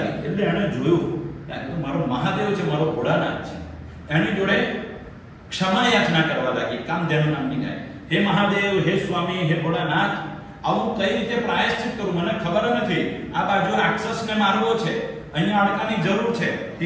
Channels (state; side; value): identical; both; correlation 1.00